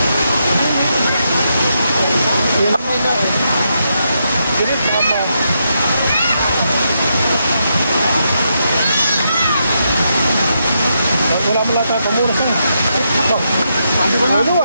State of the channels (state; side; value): inverted; both; correlation -0.82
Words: Wala mo lang tayo pamuras na. Hindi ba nga?